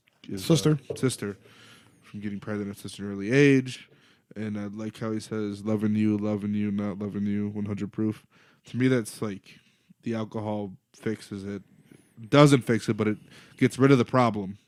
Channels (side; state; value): both; identical; correlation 1.00